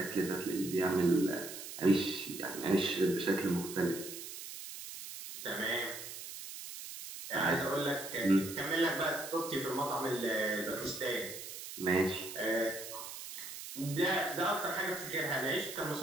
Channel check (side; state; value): right; noise; hiss, 10 dB below the sound